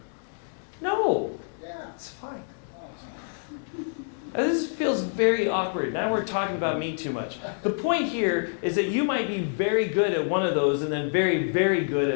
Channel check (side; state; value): right; silent; digital silence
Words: No, Yeah. it's fine. Oh, it's not. This feels very awkward. Now we're talking about me too much. The point here is that you might be very good at one of those and then very, very good